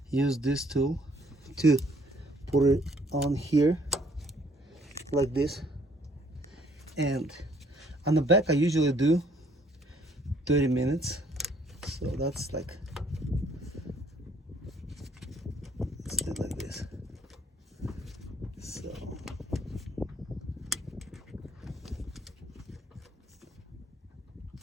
use this tool to put it on here like this. And on the back I usually do 30 minutes, so that's like, let's do it like this. So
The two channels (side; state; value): both; normal; correlation 0.63